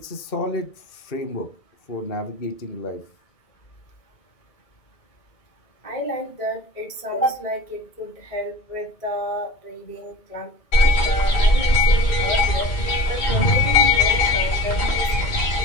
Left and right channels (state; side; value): late; right; 2.2 ms